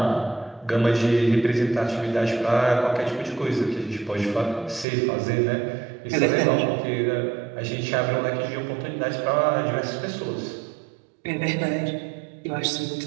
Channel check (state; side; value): drops out; left; at 4.9 s